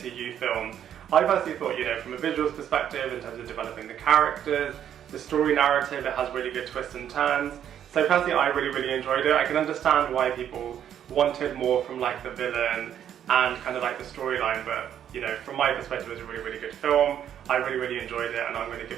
films. I personally thought, you know, from a visuals perspective, in terms of developing the characters, the story narrative, it has really good twists and turns. So personally, I really enjoyed it. I can understand why people wanted more from like the villain and kind of like the storyline, but you know, from my perspective, it was a really good film. I really enjoyed it, and I'm going to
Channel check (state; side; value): quieter; left; 9.8 dB